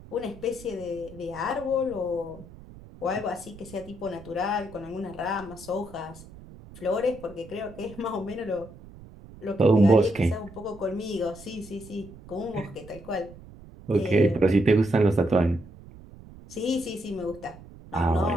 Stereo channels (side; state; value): right; noise; rumble, 18 dB below the sound